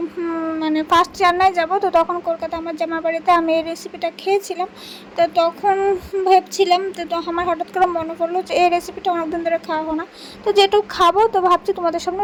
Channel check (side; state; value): both; identical; correlation 1.00